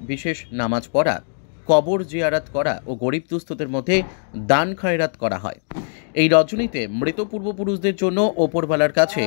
বিশেষ নামাজ পড়া, কবর জিয়ারাত করা ও গরিব দুস্থদের মধ্যে দান খয়রাত করা হয়। এই রজনীতে মৃত পূর্বপুরুষদের জন্য ওপরওয়ালার কাছে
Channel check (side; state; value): right; silent; digital silence